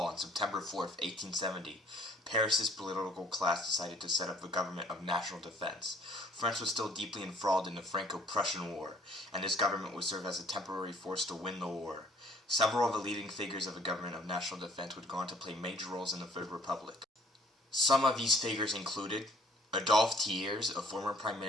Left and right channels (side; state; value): both; normal; correlation 0.57